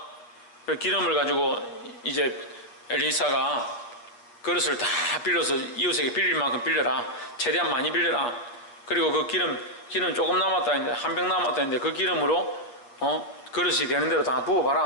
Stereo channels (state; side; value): late; right; 8.5 ms